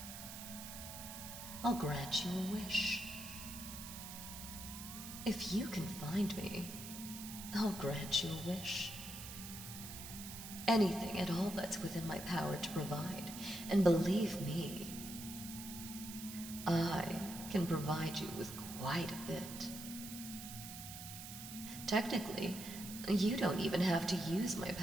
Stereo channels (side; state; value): right; noise; hiss, 10 dB below the sound